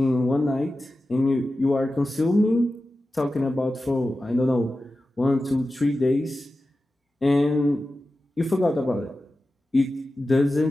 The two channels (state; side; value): normal; both; correlation 0.94